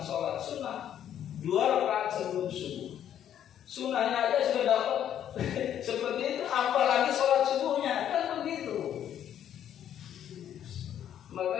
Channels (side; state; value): right; quieter; 10.2 dB